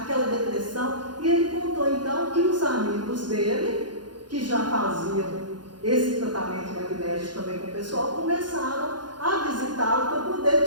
depressão, e ele contou então que os amigos dele, que já faziam esse tratamento magnético também com o pessoal, começaram a visitá-lo para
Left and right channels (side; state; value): left; late; 0.71 ms